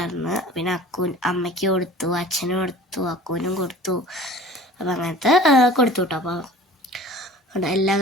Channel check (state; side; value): normal; both; correlation 0.43